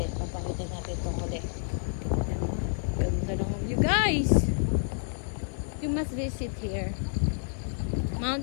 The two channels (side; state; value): right; silent; digital silence